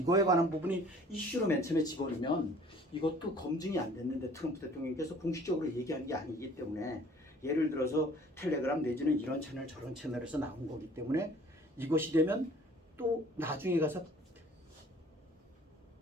관한 부분이 이슈로 맨 처음에 집어넣으면 이것도 검증이 안 됐는데 트럼프 대통령께서 공식적으로 얘기한 게 아니기 때문에 예를 들어서 텔레그램 내지는 이런 채널 저런 채널에서 나온 거기 때문에 이것이 되면 또 나중에 가서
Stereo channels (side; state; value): both; normal; correlation 0.52